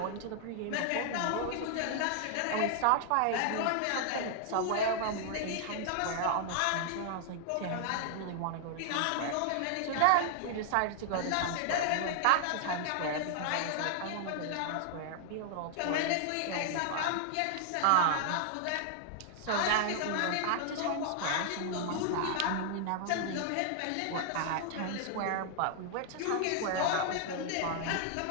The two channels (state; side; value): different; both; correlation -0.01